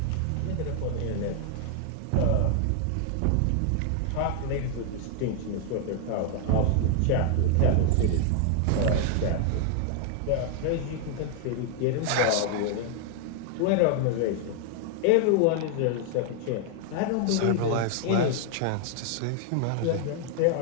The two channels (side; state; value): both; different; correlation 0.00